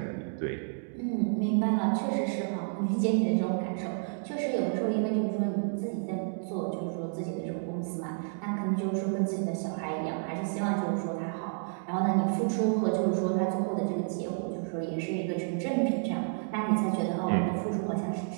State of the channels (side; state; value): left; silent; digital silence